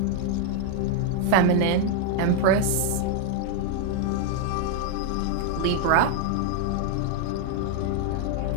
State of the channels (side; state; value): both; different; correlation 0.00